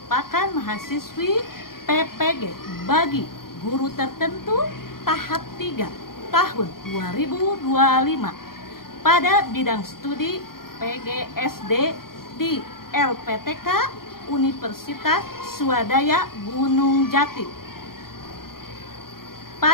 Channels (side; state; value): right; late; 0.92 ms